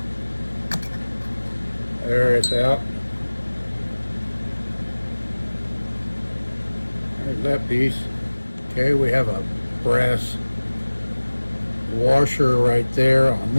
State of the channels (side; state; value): both; inverted; correlation -1.00